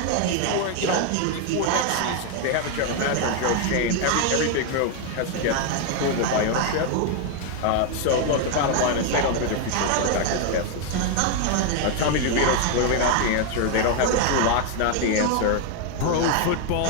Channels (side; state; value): both; different; correlation 0.00